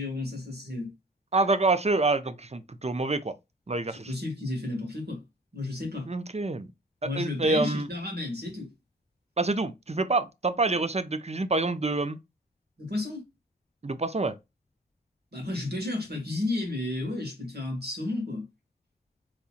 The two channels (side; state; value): both; normal; correlation 0.47